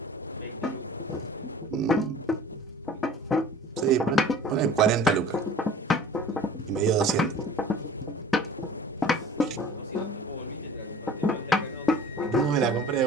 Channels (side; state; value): both; normal; correlation 0.44